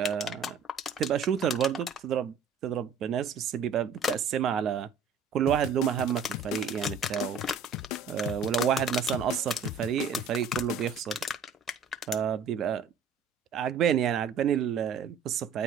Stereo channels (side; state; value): left; quieter; 5.6 dB